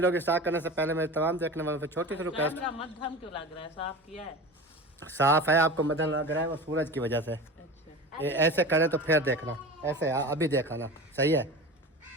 स्टार्ट करने से पहले मेरे तमाम देखने वालों से छोटी सी रिक्वेस्ट। मध्यम क्यों लग रहा है? साफ किया है? साफ है, आपको मदन लग रहा है वो सूरज की वजह से। ये ऐसे करें तो फिर देखना, ऐसे अभी देखा ना, सही है।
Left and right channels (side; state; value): both; normal; correlation 0.32